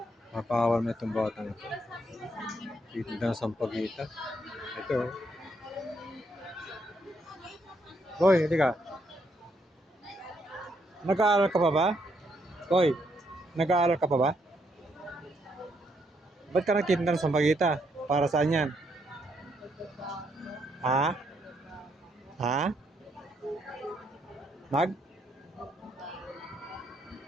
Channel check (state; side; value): normal; both; correlation 0.74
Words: makakawal na itong bata na ito. Titinda ng sampagita. Ito. Boy, hindi ka. Nag-aaral ka pa ba? Boy, nag-aaral ka pa ba? Ba't ka nagtitinda ng sampagita? Para saan yan? Ha? Ha? Mag?